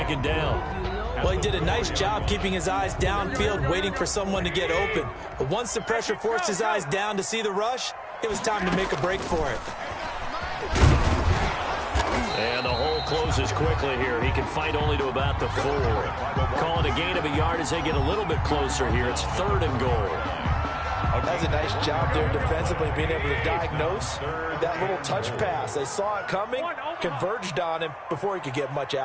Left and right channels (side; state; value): both; identical; correlation 1.00